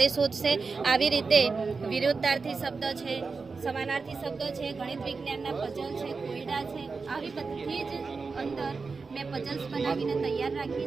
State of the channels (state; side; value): quieter; left; 4.5 dB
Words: શોધશે। આવી રીતે વિરુદ્ધાર્થી શબ્દ છે, સમાનાર્થી શબ્દ છે, ગણિત વિજ્ઞાનના પઝલ છે, કોયડા છે, આવી બધી જ અંદર મેં પઝલ્સ બનાવીને તૈયાર રાખી